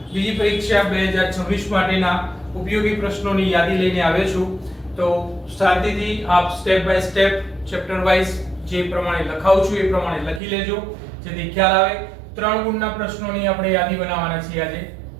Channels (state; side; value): drops out; left; at 10.4 s